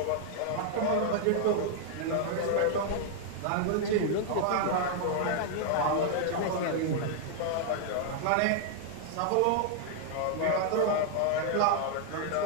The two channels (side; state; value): both; different; correlation -0.01